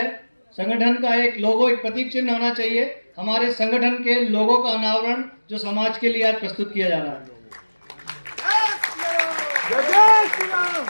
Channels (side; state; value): both; inverted; correlation -1.00